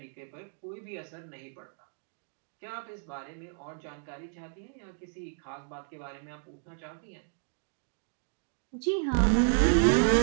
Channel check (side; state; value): left; silent; digital silence